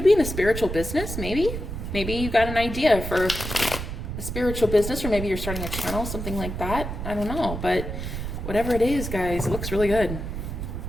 be in a spiritual business, maybe. Maybe you got an idea for a spiritual business, or maybe you're starting a channel, something like that. I don't know, but whatever it is, guys, it looks really good.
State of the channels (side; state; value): right; noise; rumble, 6 dB below the sound